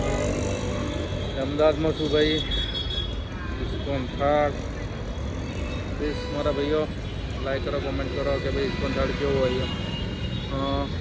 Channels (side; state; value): both; identical; correlation 1.00